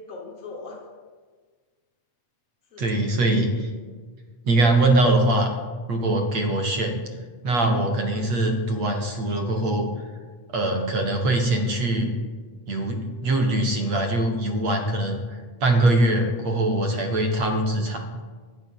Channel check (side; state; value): left; late; 8.4 ms